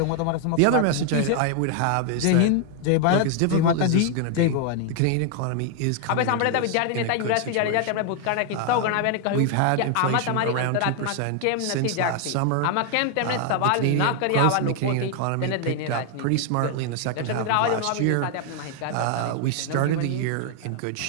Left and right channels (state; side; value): different; both; correlation 0.00